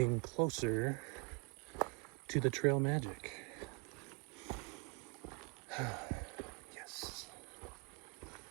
closer to the trail magic. Yes.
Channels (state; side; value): quieter; left; 32.5 dB